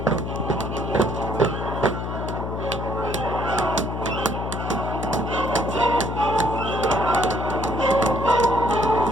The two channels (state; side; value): noise; left; hum, 4 dB below the sound